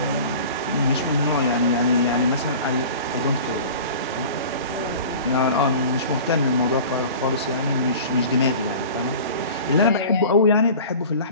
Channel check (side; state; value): both; inverted; correlation -0.40